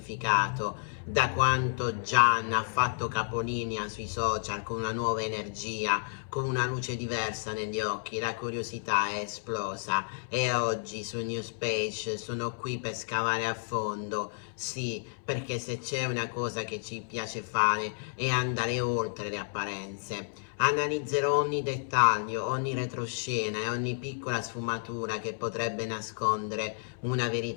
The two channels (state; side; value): silent; right; 57 dB below the other